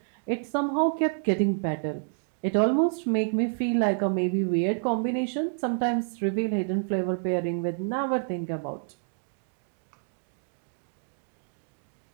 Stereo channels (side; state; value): left; silent; digital silence